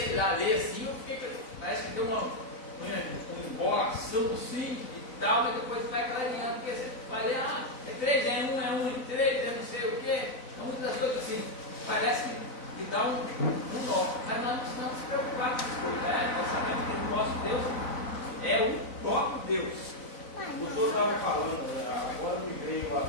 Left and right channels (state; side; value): late; right; 4.0 ms